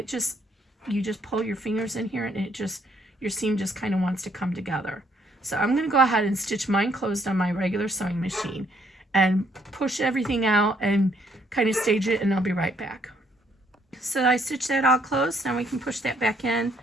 just pull your fingers in here and it just, your seam just kind of wants to come together. So I'm going to go ahead and stitch mine closed on my regular sewing machine and push everything out and kind of stage it, and I'll be right back. So I stitched that all closed. Now we can push that back in,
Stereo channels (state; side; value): normal; both; correlation 0.69